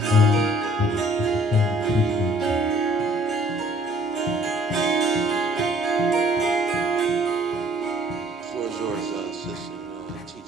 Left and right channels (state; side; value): normal; both; correlation 0.57